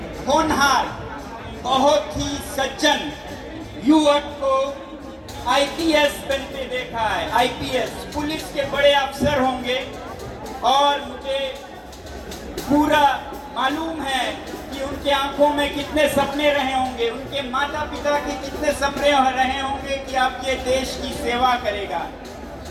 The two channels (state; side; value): identical; both; correlation 1.00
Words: होनहार, बहुत ही सज्जन युवक को आईपीएस बनते देखा है। आईपीएस पुलिस के बड़े अफसर होंगे और मुझे पूरा मालूम है कि उनके आंखों में कितने सपने रहे होंगे, उनके माता पिता के कितने सपने रहे होंगे कि आप ये देश की सेवा करेगा।